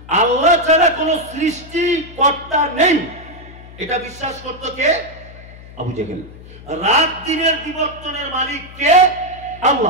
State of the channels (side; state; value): left; noise; hum, 18 dB below the sound